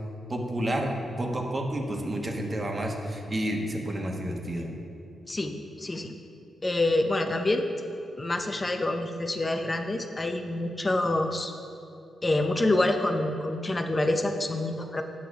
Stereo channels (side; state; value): both; normal; correlation 0.90